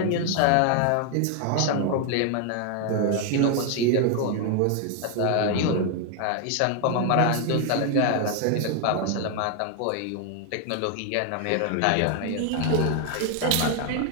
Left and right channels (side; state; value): both; different; correlation 0.01